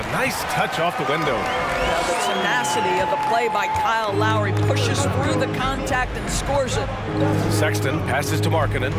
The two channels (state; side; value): identical; both; correlation 1.00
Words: nice touch off the window. The tenacity of the play by Kyle Lowry pushes through the contact and scores it. Sexton passes to Markkanen.